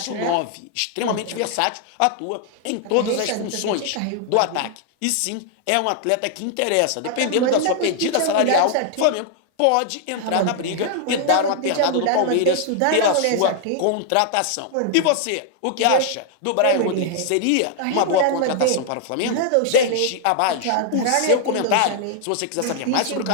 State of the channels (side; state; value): both; different; correlation 0.00